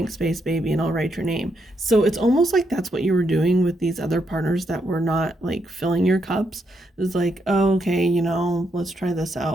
space, baby, and I'll write your name. So it's almost like that's what you were doing with these other partners that were not like filling your cups. It's like, oh, okay, you know, let's try this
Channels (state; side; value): normal; both; correlation 0.79